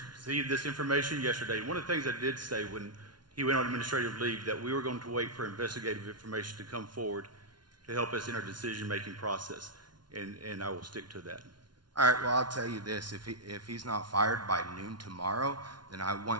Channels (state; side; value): late; left; 0.70 ms